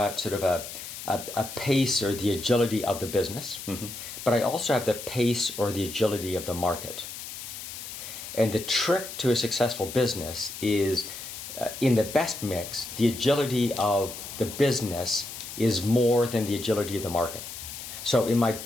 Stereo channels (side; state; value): left; noise; hiss, 10 dB below the sound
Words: sort of a pace or the agility of the business, but I also have the pace or the agility of the market. And the trick to a successful business is in the best mix, the agility of the business is more than the agility of the market. So in my